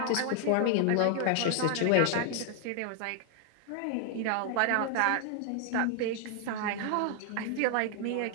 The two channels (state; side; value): different; both; correlation 0.00